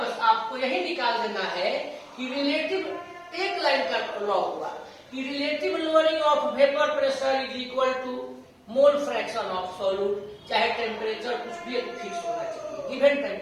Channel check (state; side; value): identical; both; correlation 1.00